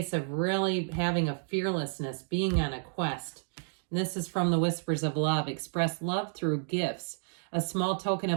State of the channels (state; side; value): silent; left; digital silence